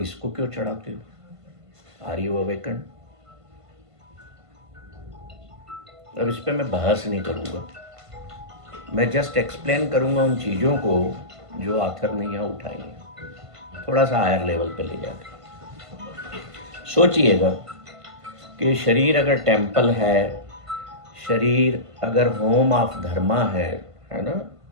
क्यों चढ़ाते हो? Are you awaken? अब इस पे मैं बहस नहीं करूँगा, मैं जस्ट एक्सप्लेन करूँगा उन चीज़ों को जो आथर ने यहाँ उठाई हैं, थोड़ा सा हायर लेवल पे ले जाकर। सोचिएगा कि शरीर अगर टेम्पल है, शरीर अगर होम ऑफ धर्मा है ना,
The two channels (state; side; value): late; left; 1.5 ms